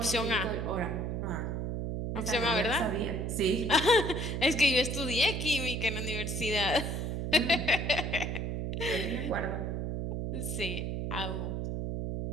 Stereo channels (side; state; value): right; noise; hum, 2 dB below the sound